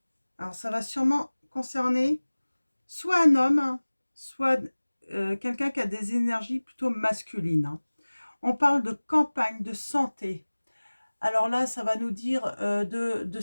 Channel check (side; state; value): both; inverted; correlation -1.00